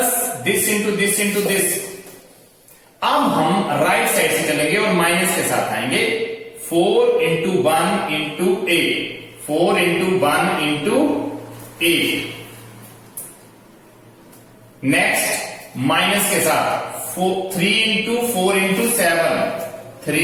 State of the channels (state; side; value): identical; both; correlation 1.00